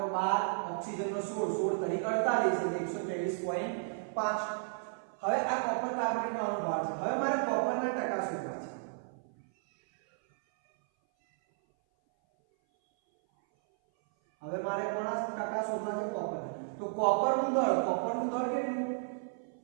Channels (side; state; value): left; silent; 56 dB below the other